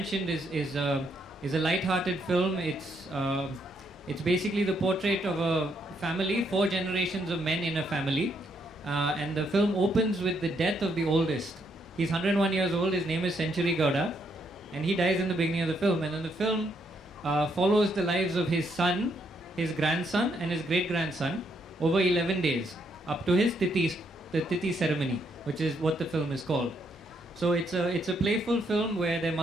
is a light-hearted film. It's basically the portrait of a family, 4 generations of men in a family, and the film opens with the death of the oldest. He's 101 years old. His name is Century Gowda, and he dies in the beginning of the film. And then the film follows the lives of his son, his grandson, and his great-grandson over 11 days up to his the Thithi ceremony, which is what the film is called. So it's a playful film where there are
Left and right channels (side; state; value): both; normal; correlation 0.74